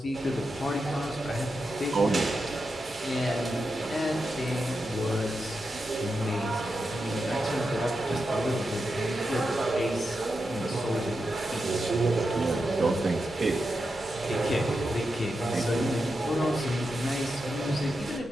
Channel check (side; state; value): both; normal; correlation 0.88